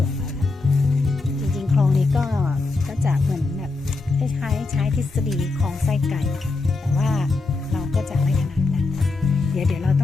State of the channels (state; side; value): quieter; right; 3.6 dB